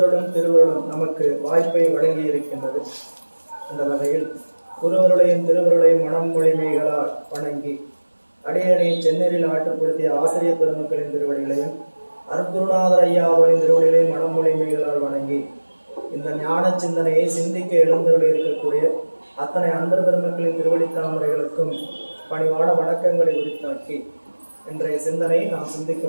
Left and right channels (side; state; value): both; inverted; correlation -1.00